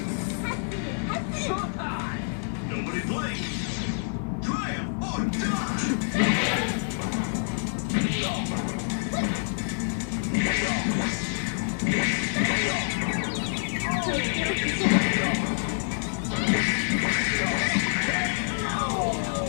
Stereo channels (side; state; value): right; silent; 60 dB below the other